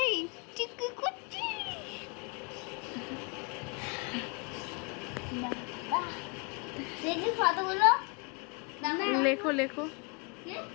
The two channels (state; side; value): quieter; right; 33.7 dB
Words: তুই কি করছিস? দেখি ফটোগুলো লেখো লেখো